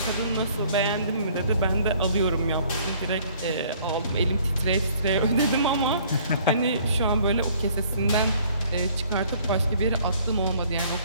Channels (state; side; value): inverted; both; correlation -0.58